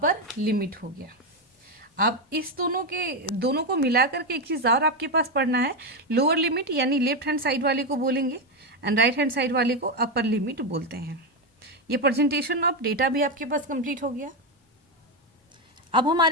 लिमिट हो गया। अब इस दोनों को मिला करके एक चीज़ और आपके पास पढ़ना है। लोअर लिमिट यानी लेफ्ट हैंड साइड वाले को बोलेंगे एंड राइट हैंड साइड वाले को अपर लिमिट बोलते हैं। ये प्रेजेंटेशन ऑफ डेटा भी आपके पास कंप्लीट हो गया। अब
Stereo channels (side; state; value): both; normal; correlation 0.09